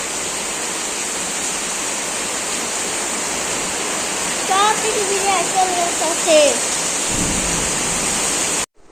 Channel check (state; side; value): identical; both; correlation 1.00